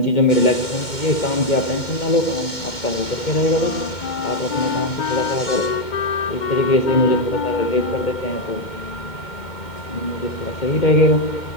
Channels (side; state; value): right; late; 2.1 ms